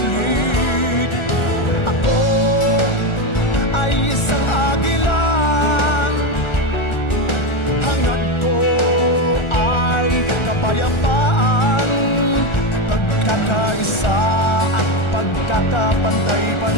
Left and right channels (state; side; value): late; right; 1.4 ms